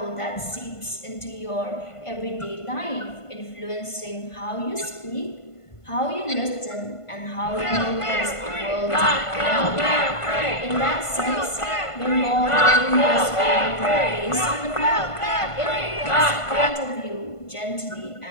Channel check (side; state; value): right; late; 1.5 ms